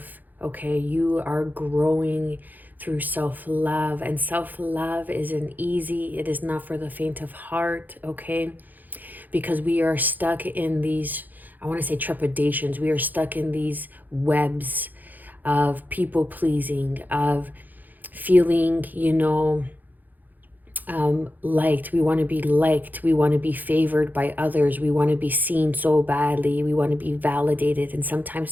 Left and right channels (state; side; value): late; left; 0.084 ms